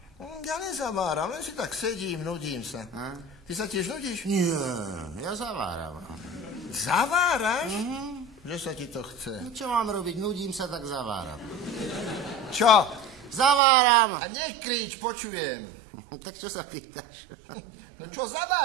Ja nezaváram, len si tak sedím, nudím sa. A? Ty sa tiež nudíš? Nie, ja zaváram. Zaváraš? Že sa ti to chce. No, čo mám robiť? Nudím sa, tak zaváram. Čo? Zaváram! A nekrič, počujem. Tak čo sa pýtaš? No čo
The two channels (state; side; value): drops out; left; at 13.6 s